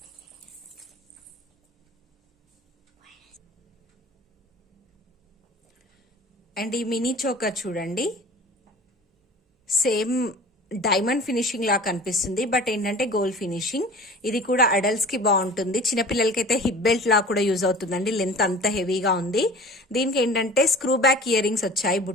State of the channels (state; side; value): normal; both; correlation 0.42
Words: అండ్ ఈ మినీ చోకర్ చూడండి, సేమ్ డైమండ్ ఫినిషింగ్ లా కనిపిస్తుంది, బట్ ఏంటంటే గోల్డ్ ఫినిషింగ్. ఇది కూడా అడల్ట్స్ కి బాగుంటుంది. చిన్నపిల్లలకైతే హిప్ బెల్ట్ లా కూడా యూజ్ అవుతుందండి. లెంత్ అంత హెవీగా ఉంది. దీనికి ఏంటంటే స్క్రూ బ్యాక్ ఇయర్ రింగ్స్ వచ్చాయి